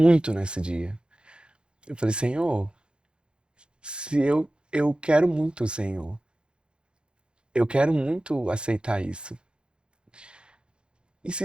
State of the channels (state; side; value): late; left; 0.052 ms